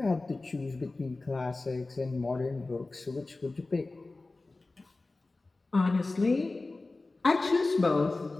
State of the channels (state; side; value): quieter; right; 3.3 dB